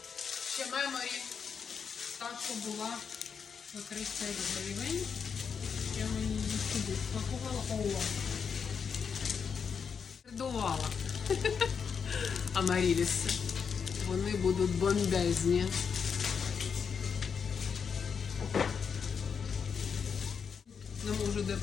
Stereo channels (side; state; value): right; quieter; 6.4 dB